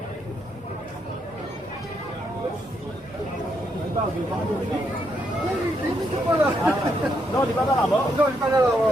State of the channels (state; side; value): normal; both; correlation 0.77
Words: Non, il n'est pas dans la mort. Non, il n'est pas dans la mort.